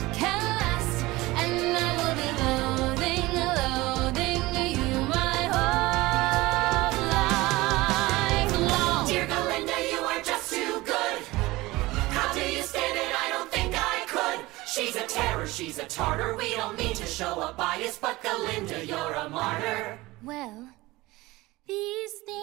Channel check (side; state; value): left; quieter; 20.1 dB